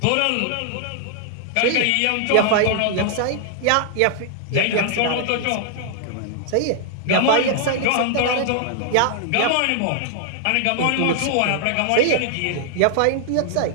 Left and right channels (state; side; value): different; both; correlation 0.00